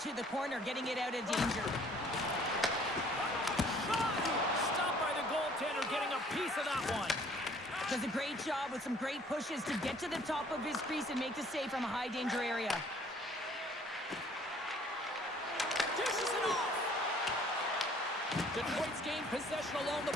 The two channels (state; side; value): normal; both; correlation 0.57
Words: to the corner, getting it out of danger. Shot. Stopped by the goaltender, getting a piece of that one. Does a great job with some great pushes to get to the top of his crease and make the save from a high danger area. Dishes it off. Detroit's gained possession along